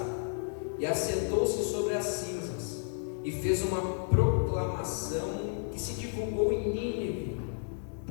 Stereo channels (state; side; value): silent; right; digital silence